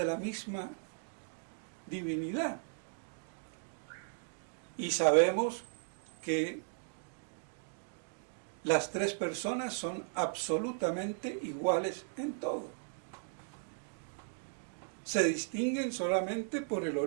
la misma divinidad. Y sabemos que las tres personas son absolutamente iguales en todo. Se distinguen solamente por el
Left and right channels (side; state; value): left; silent; digital silence